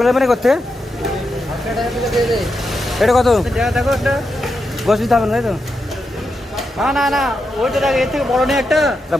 নেবেন করতে। এটা কত? গোস দিতে হবে না, তাই তো? না না ওইটা দেখ, এর থেকে বড় নেই একটা।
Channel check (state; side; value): normal; both; correlation 0.86